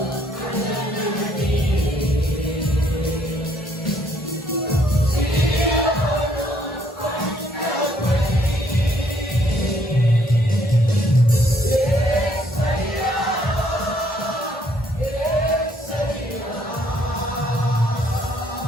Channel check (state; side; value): normal; both; correlation 0.67